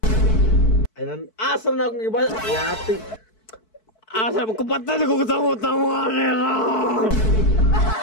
Ayan, asa na akong gibasa. Yati. Asa mo kapatay ko tamo-tamo ani.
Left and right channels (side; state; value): right; late; 4.6 ms